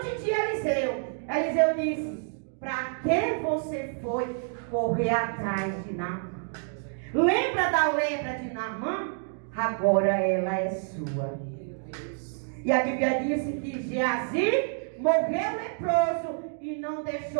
de Eliseu, Eliseu disse, para que você foi correr atrás de Naamã? Lembra da lepra de Naamã? Agora ela é sua. E a Bíblia diz que Geazi morreu leproso e não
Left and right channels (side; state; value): left; silent; 59 dB below the other